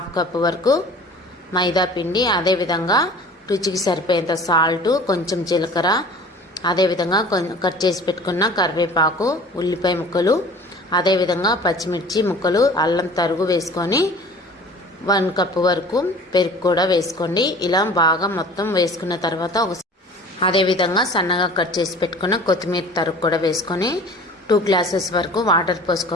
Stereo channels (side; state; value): both; normal; correlation 0.44